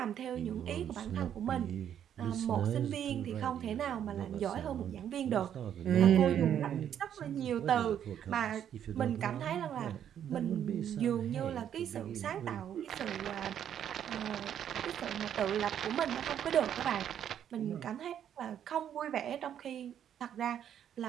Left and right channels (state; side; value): quieter; left; 9.6 dB